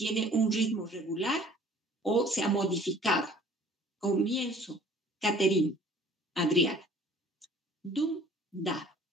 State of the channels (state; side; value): normal; both; correlation 0.52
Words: un ritmo regular o se ha modificado. Comienzo, Catherine Adriana. Dum, da,